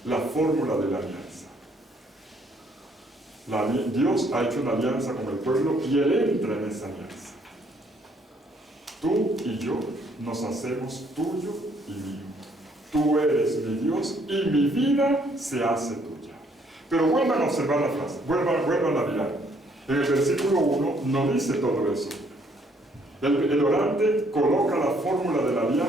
la fórmula de la alianza. Dios ha hecho una alianza con el pueblo y Él entra en esa alianza. Tú y yo nos hacemos tuyo y mío. Tú eres mi Dios y mi vida se hace tuya. Pero vuelvan a observar la frase, vuelvan a mirar. En el versículo 1 no dice todo eso. El orante coloca la fórmula de la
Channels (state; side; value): normal; both; correlation 0.66